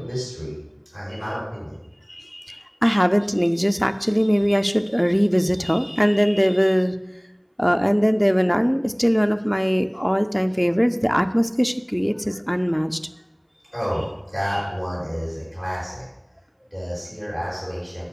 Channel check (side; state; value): both; identical; correlation 1.00